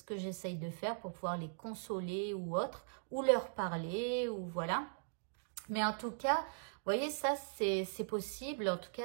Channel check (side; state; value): left; silent; digital silence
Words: que j'essaye de faire pour pouvoir les consoler ou autre, ou leur parler, ou voilà. Mais en tout cas, vous voyez, ça, c'est possible. En tout